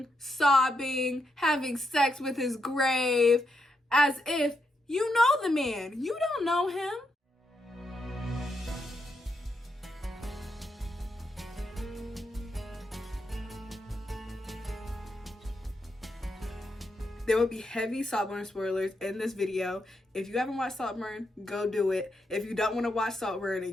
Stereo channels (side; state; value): both; normal; correlation 0.82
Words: sobbing, having sex with his grave, as if you know the man. You don't know him. There will be heavy Saltburn spoilers in this video. If you haven't watched Saltburn, go do it. If you don't want to watch Saltburn